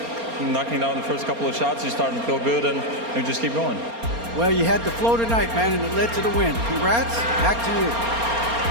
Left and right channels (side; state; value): left; late; 4.3 ms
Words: knocking down the first couple of shots, you start to feel good, and you just keep going. Well, you had the flow tonight, man, and it led to the win. Congrats. Back to you.